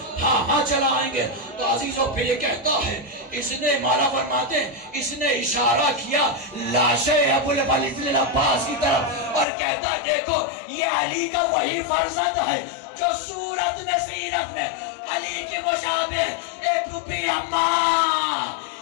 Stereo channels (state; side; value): drops out; right; at 9.5 s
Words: हाँ चलाएंगे। तो अजीजों पे ये कहता है, इसने मारा फरमाते, इसने इशारा किया लाशे अबुल वलीद अब्बास की तरफ और कहता देखो ये अली का वही फर्जंद है जो सूरत में सीरत में अली के मुशाबे। ए फूफी अम्मा